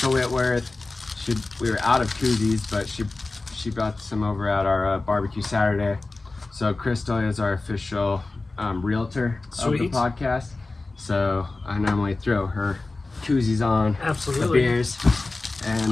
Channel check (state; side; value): quieter; right; 3.3 dB